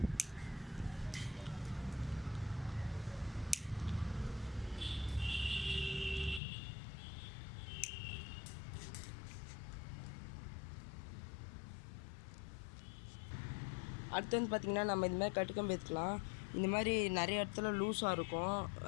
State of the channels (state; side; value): drops out; right; at 6.4 s